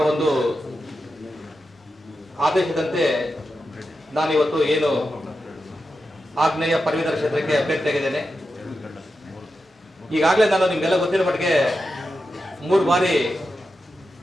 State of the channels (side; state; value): both; normal; correlation 0.89